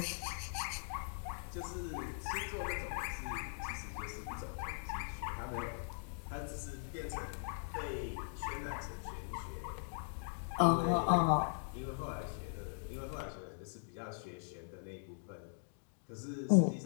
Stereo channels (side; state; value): right; silent; digital silence